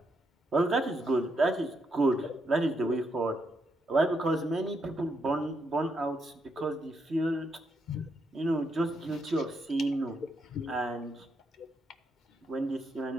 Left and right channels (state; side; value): normal; both; correlation 0.80